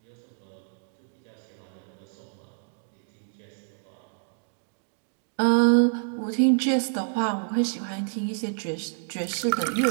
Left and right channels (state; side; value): silent; left; digital silence